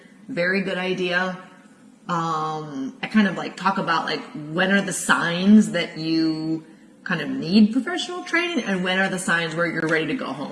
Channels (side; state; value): both; identical; correlation 1.00